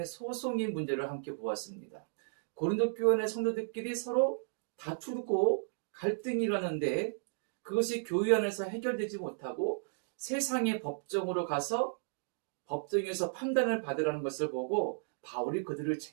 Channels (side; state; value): left; silent; digital silence